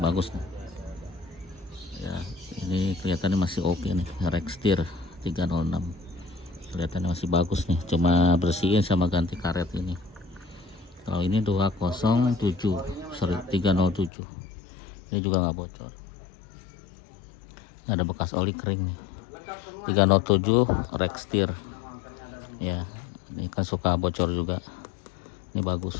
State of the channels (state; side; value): drops out; right; at 14.1 s